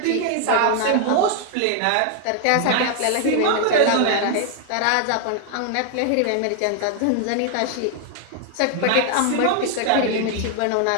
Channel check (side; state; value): both; different; correlation 0.00